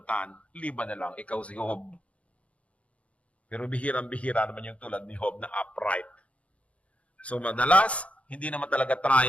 liban na lang ikaw si Job. Pero bihirang-bihira naman yung tulad ni Job na upright. So madalas, hindi naman talaga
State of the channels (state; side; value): late; right; 0.064 ms